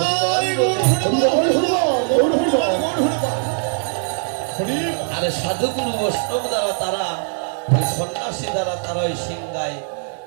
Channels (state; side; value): silent; left; digital silence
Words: আর সাধুগুরু বৈষ্ণব দ্বারা তারা ওই সন্ন্যাসী দ্বারা তারা ওই সিংহায়